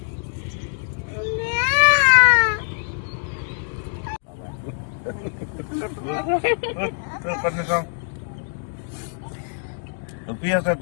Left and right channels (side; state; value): right; silent; 63 dB below the other